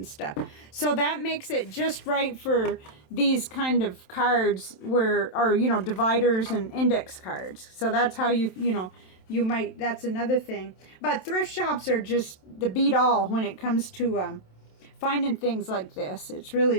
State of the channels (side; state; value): right; late; 27 ms